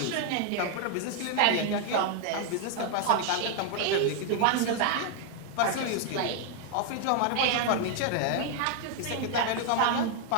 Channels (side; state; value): both; different; correlation 0.00